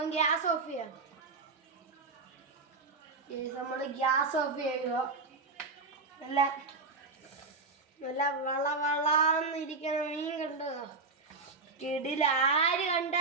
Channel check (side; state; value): left; quieter; 3.9 dB